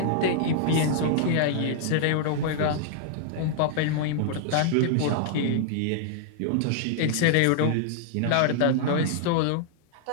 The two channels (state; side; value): different; both; correlation -0.01